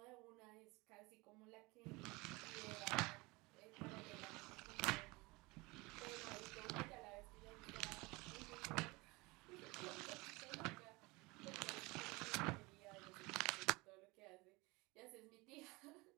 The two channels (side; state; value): left; quieter; 24.2 dB